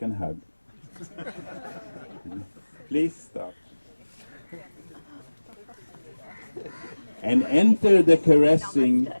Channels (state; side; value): inverted; both; correlation -1.00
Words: hug. Please stop. And enter the caressing